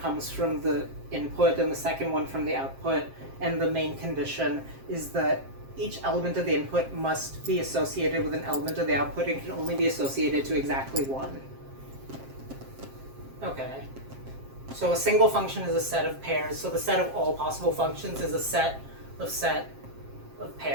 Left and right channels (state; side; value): late; left; 7.5 ms